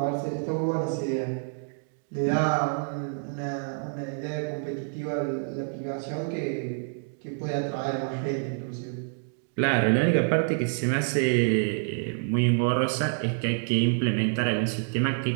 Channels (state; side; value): silent; left; digital silence